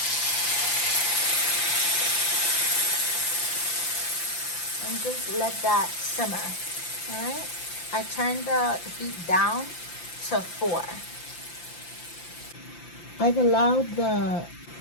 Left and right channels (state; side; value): late; right; 5.8 ms